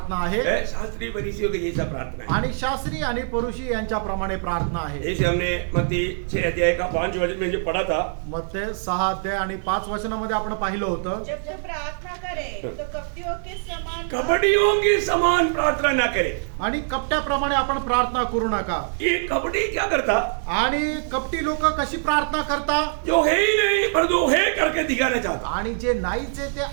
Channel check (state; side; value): silent; left; digital silence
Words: आहे शास्त्रीय फरीसियों के जैसा प्रार्थना है। आणि शास्त्री आणि परुषी यांच्याप्रमाणे प्रार्थना आहे। जैसे हमने मत्ती 6 अध्याय का 5 वचन में जो पढ़ा था, मत्ते 6 अध्याय आणि 5 वचनामध्ये आपण पाहिलं होतं, जब जब प्रार्थना करे तो कपटियों के समान कपटियों की समान प्रार्थना ना करे। आणि कपट्याप्रमाणे आपण प्रार्थना करू नका। ये कपटी क्या करता? आणि कपटी लोक कशी प्रार्थना करता? जो है ही नहीं पर जो है करके दिखाना चाहता। आणि जे नाहीच आहे ते